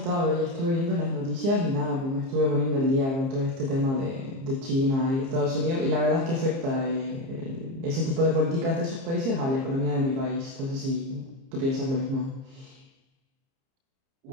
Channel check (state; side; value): late; left; 30 ms